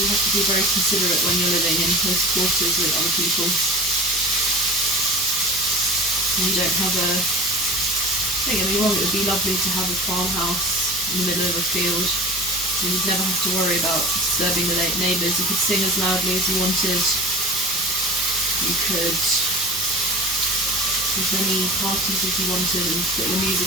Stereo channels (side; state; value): left; noise; hum, 17 dB below the sound